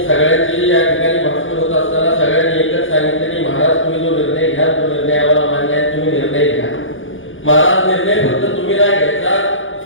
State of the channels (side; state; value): right; late; 0.57 ms